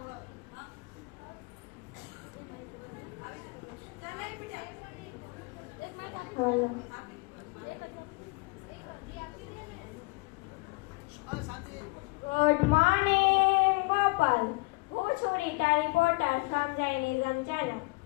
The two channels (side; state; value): right; quieter; 28.1 dB